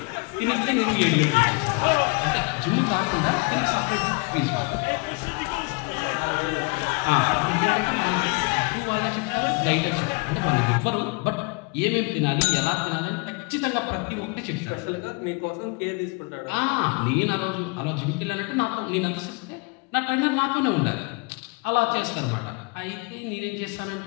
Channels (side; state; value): right; quieter; 31.2 dB